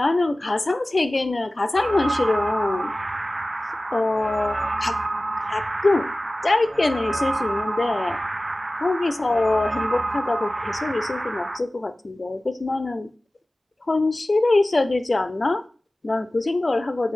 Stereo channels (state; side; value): normal; both; correlation 0.97